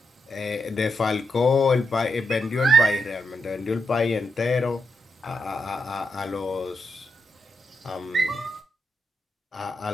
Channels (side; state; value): both; normal; correlation 0.83